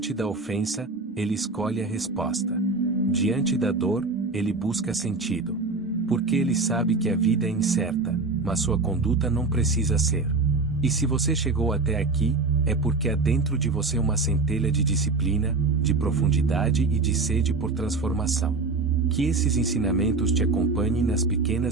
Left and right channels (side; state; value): left; quieter; 3.7 dB